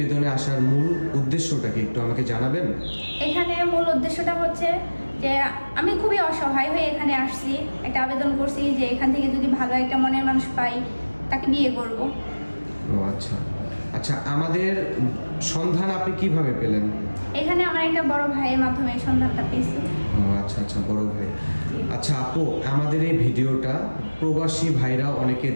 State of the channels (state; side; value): inverted; both; correlation -1.00